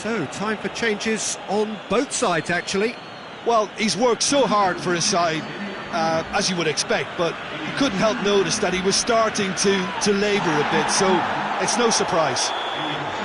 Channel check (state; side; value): identical; both; correlation 1.00